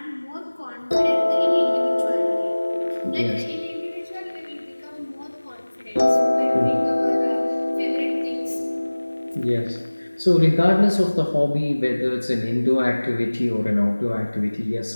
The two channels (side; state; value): both; inverted; correlation -1.00